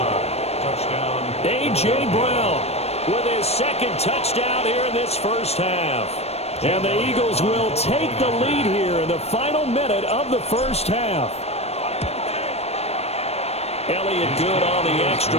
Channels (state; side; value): late; right; 0.31 ms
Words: Touchdown. A.J. Brown with his 2nd touchdown here in this first half. And the Eagles will take the lead here in the final minute of the first half. Elliott good on the extra